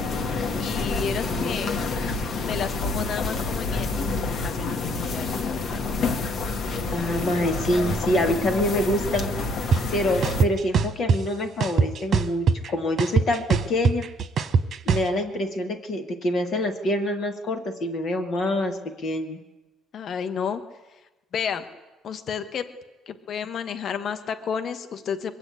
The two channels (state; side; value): normal; both; correlation 0.64